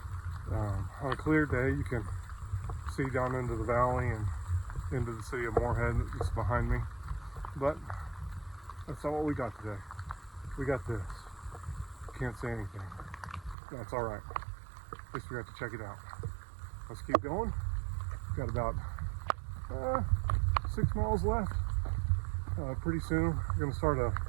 On a clear day, you can see down into the valley and into the city of Morehead that's behind me. But that's not what we got today. We got this. Can't say anything. That's all right. At least we got to check it out. Let's keep going. Got about 6 miles left. Pretty soon we're going to start a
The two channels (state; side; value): drops out; left; at 13.6 s